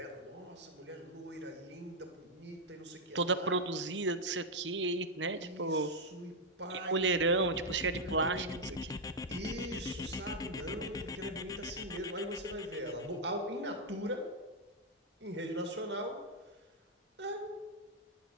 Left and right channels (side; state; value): both; normal; correlation -0.01